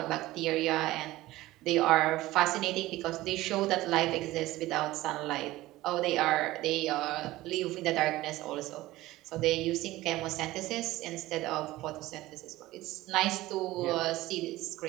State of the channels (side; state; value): left; quieter; 17.3 dB